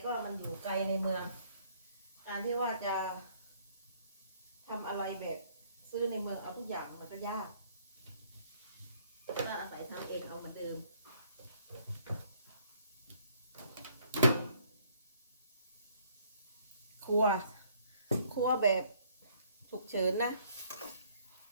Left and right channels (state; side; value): inverted; both; correlation -0.63